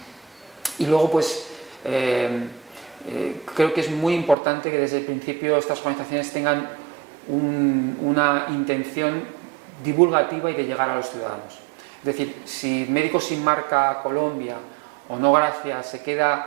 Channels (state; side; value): drops out; left; at 4.4 s